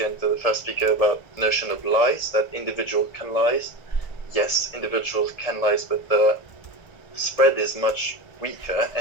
and to the first speaker about the notion of lies, that individual can lies. Yes, individuals can lies, but the spread is much weaker,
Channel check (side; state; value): right; late; 1.7 ms